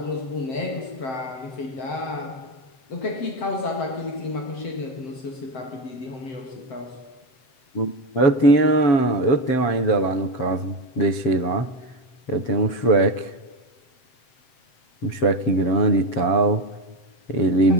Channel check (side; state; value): right; late; 7.7 ms